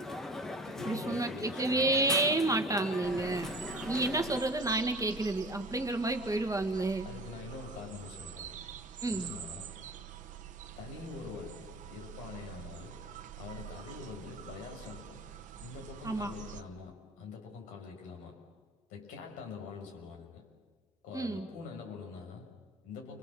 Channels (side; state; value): both; normal; correlation 0.40